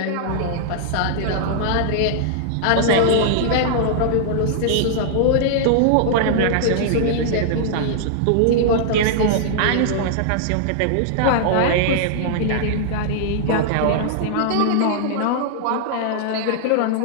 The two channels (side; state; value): both; different; correlation -0.01